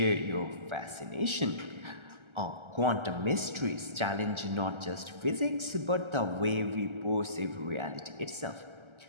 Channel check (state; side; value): late; left; 1.3 ms